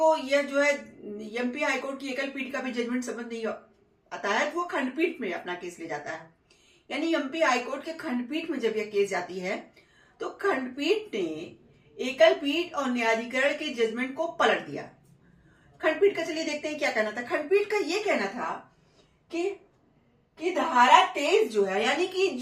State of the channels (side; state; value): both; identical; correlation 1.00